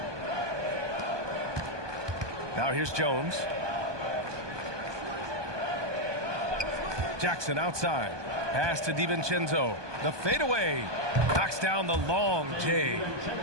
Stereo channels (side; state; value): left; late; 1.2 ms